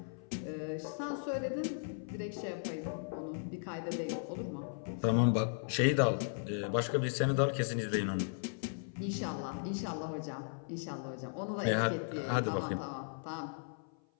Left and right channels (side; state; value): right; silent; 53 dB below the other